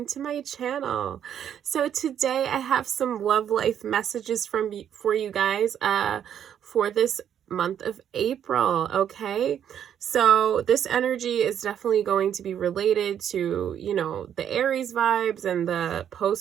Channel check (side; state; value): left; quieter; 9.4 dB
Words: to my channel. So today I have some love life messages for you guys for this month of April, okay? So this energy is definitely going to be related to, the Aries vibes and the